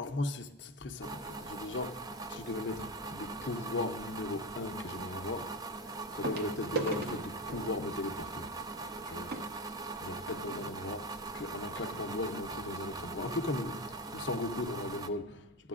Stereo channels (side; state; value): both; normal; correlation 0.19